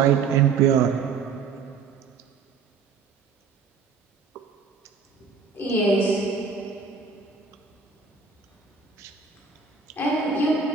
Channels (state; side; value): quieter; left; 5.3 dB